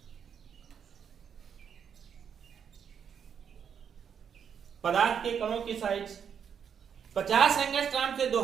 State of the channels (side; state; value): left; quieter; 7.6 dB